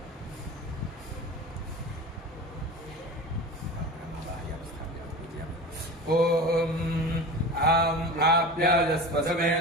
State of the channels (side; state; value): both; normal; correlation 0.32